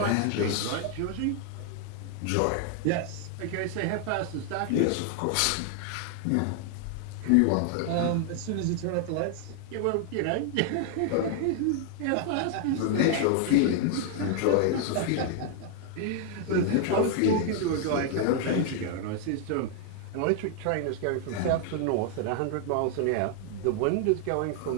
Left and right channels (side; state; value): both; different; correlation 0.00